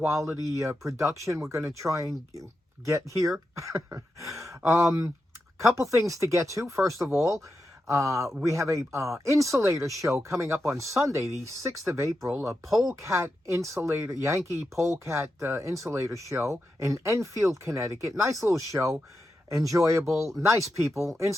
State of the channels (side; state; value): both; normal; correlation 0.88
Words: production we're going to try and get here. Couple things to get to. First of all, we have a insulator show coming up on Sunday, the 6th of April, a polecat insulator, Yankee polecat insulator show in Enfield, Connecticut. Nice little show, enjoyable, nice people.